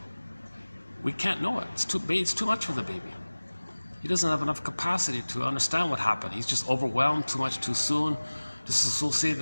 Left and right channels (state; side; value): inverted; both; correlation -1.00